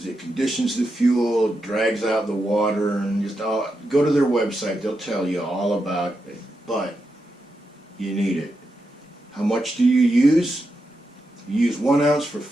it conditions the fuel, drags out the water, and just go to their website. They'll tell you all about it, but you need it. How much do you use? You use 1 ounce for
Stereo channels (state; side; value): normal; both; correlation 0.86